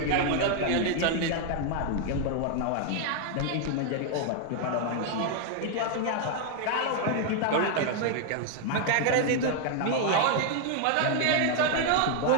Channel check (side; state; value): both; different; correlation 0.00